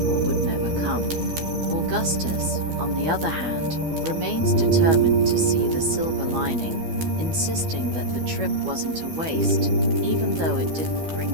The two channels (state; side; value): late; left; 12 ms